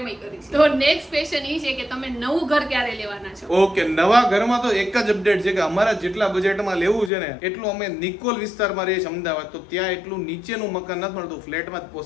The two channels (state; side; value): drops out; right; at 7.1 s